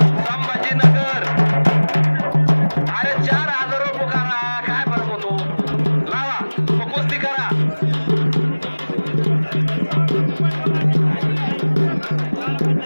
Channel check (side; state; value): both; inverted; correlation -1.00